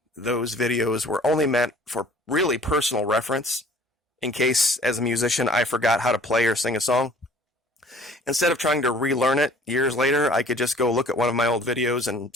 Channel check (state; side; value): normal; both; correlation 0.52